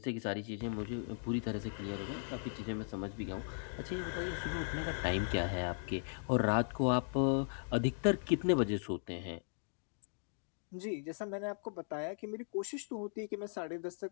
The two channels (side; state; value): right; silent; digital silence